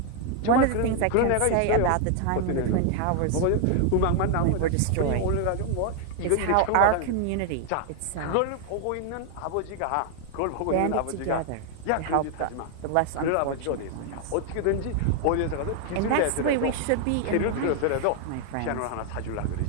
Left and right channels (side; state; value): both; different; correlation 0.00